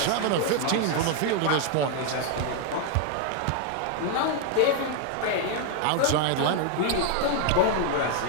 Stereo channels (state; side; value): different; both; correlation 0.01